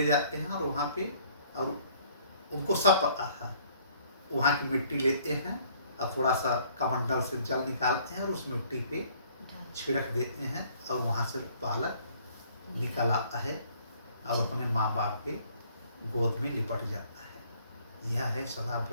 जाते हैं और वहाँ पे, और उनको सब पता था, वहाँ की मिट्टी लेते हैं और थोड़ा सा कमंडल से जल निकालते हैं और उस मिट्टी पे छिड़क देते हैं, और वहाँ से बालक निकल आता है और अपने माँ बाप के गोद में लिपट जाता है। यह है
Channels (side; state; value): both; inverted; correlation -0.59